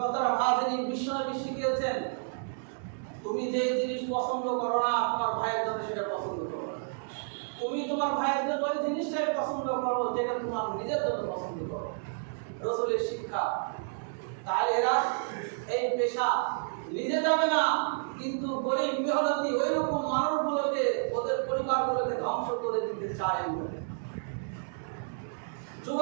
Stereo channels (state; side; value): silent; left; digital silence